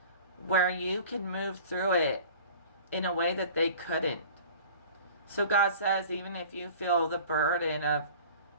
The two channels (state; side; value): inverted; both; correlation -0.44